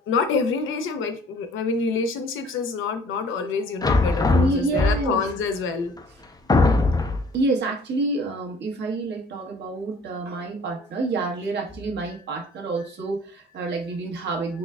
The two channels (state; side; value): normal; both; correlation 0.53